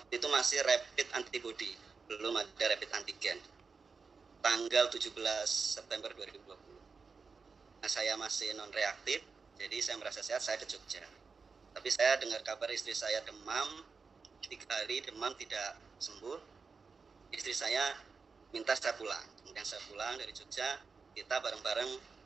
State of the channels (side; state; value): left; quieter; 4.9 dB